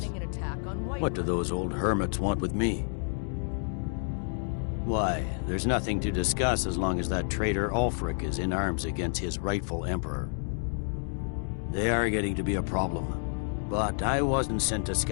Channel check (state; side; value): silent; right; 58 dB below the other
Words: an attack on What do those old hermits want with me? Why, there's nothing to discuss as long as that traitor Ulfric is in arms against his rightful emperor. They are getting to be a problem. But I wasn't sent to